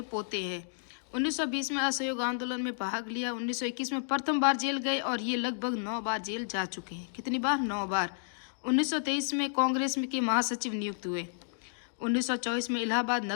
पोते हैं। 1920 में असहयोग आंदोलन में भाग लिया। 1921 में प्रथम बार जेल गए और ये लगभग 9 बार जेल जा चुके हैं। कितनी बार, 9 बार। 1923 में कांग्रेस के महासचिव नियुक्त हुए। 1924 में इलाहाबाद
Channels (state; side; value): silent; right; digital silence